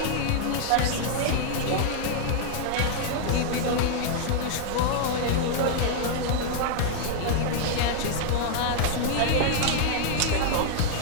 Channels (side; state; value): both; different; correlation -0.01